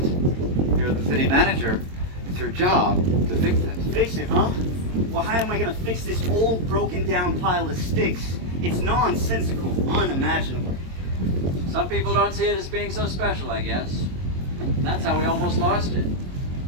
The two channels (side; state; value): left; late; 22 ms